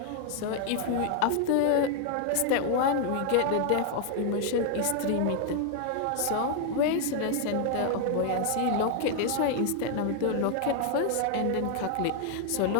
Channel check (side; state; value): both; different; correlation 0.00